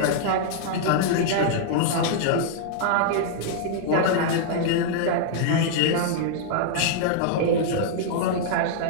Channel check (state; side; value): different; both; correlation -0.01